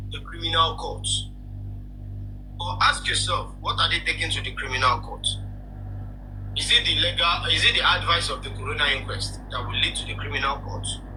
the criminal courts. Or ask yourself, what are they taking to the criminal court? Is it the advice of the corona inquest that will lead to the criminal court?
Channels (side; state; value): both; identical; correlation 1.00